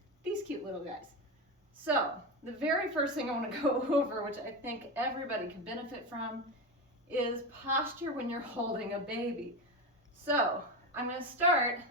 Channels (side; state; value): both; normal; correlation 0.18